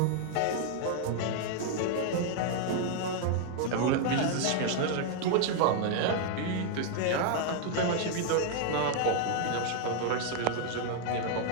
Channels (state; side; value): different; both; correlation 0.00